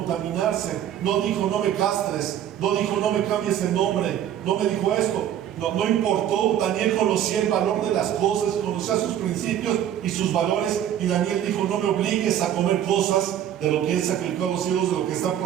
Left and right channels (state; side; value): quieter; left; 10.5 dB